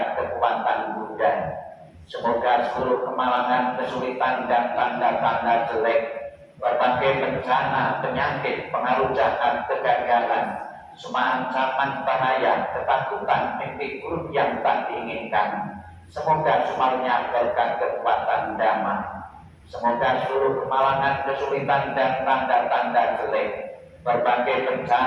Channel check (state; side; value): identical; both; correlation 1.00